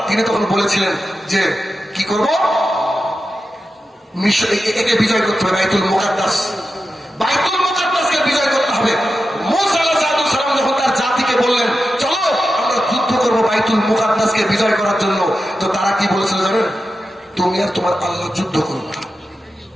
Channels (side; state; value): both; normal; correlation 0.91